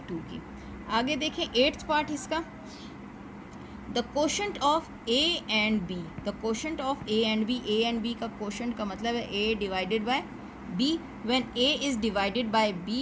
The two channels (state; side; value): identical; both; correlation 1.00